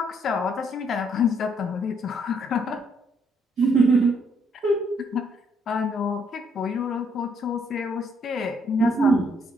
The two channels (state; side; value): normal; both; correlation 0.70